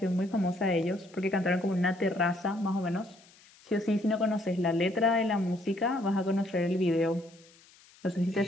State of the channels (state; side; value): noise; left; hiss, 27 dB below the sound